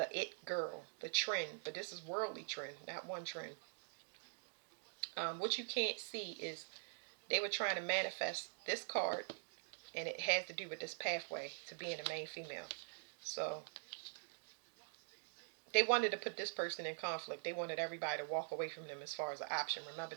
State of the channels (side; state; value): left; silent; digital silence